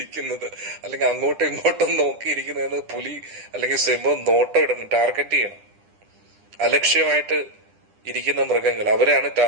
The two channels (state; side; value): late; left; 9.9 ms